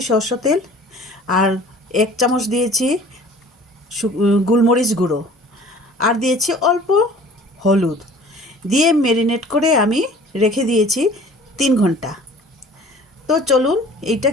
সর্ষে তেল, আর 1 চামচ দিয়েছি গোলমরিচ গুঁড়ো, আর দিয়েছি অল্প হলুদ দিয়ে ম্যারিনেট করে আমি রেখে দিয়েছি 3 ঘন্টা। তো চলুন এইটা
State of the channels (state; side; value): normal; both; correlation 0.48